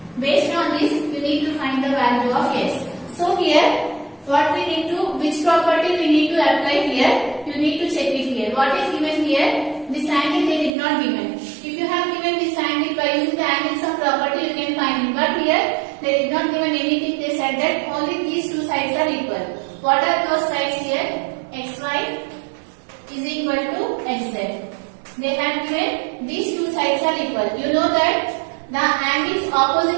Based on this, you need to find the value of x. So here, what we need to, which property we need to apply here? You need to check it here. What is given here? This angle they did not given. If you have given this angle by using the angle sum property, you can find it. But here they did not given anything. They said that only these two sides are equal. What are those sides here? xy is equal to xz. They have given these two sides are equal. You know that the angles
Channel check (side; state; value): left; drops out; at 10.7 s